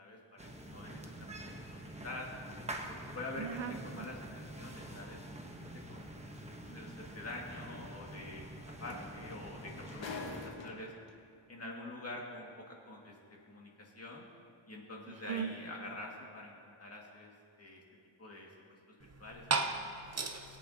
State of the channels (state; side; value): normal; both; correlation 0.03